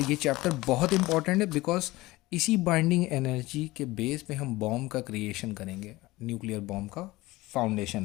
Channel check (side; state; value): right; quieter; 19.7 dB